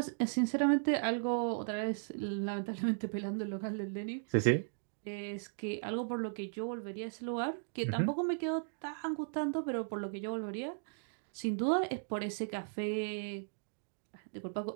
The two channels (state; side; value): silent; left; digital silence